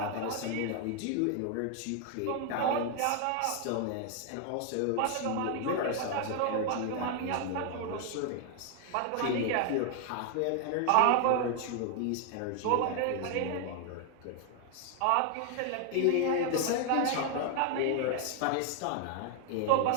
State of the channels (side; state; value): both; different; correlation 0.00